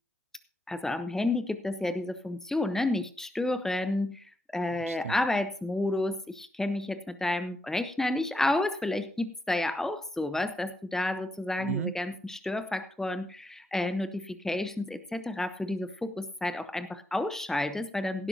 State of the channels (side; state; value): both; normal; correlation 0.83